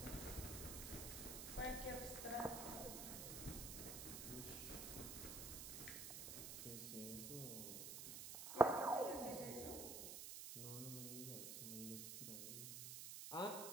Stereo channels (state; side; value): noise; right; hiss, 5 dB below the sound